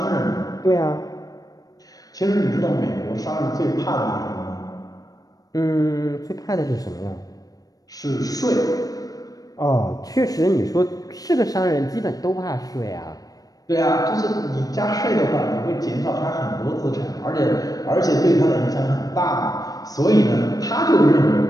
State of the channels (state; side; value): late; right; 0.18 ms